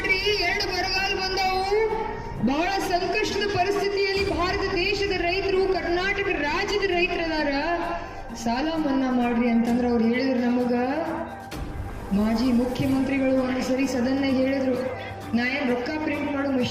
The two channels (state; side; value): identical; both; correlation 1.00